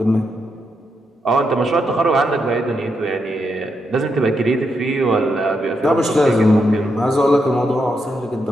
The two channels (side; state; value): both; normal; correlation 0.82